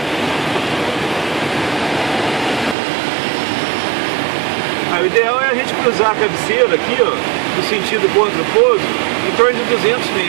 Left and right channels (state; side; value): drops out; left; at 2.8 s